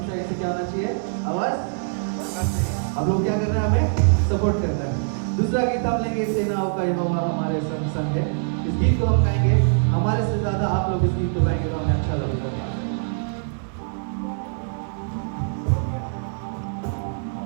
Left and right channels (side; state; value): left; silent; digital silence